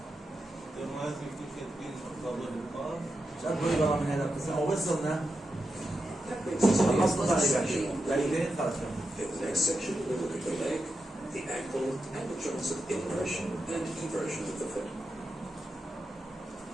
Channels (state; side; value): normal; both; correlation 0.88